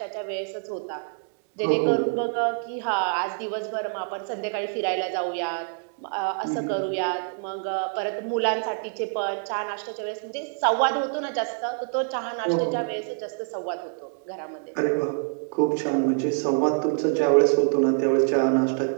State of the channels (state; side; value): silent; left; 61 dB below the other